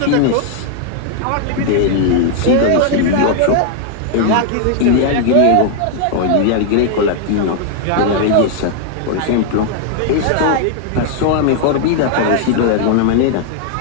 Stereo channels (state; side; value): different; both; correlation 0.00